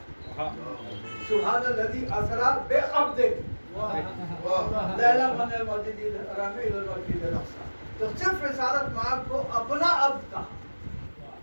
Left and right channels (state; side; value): inverted; both; correlation -1.00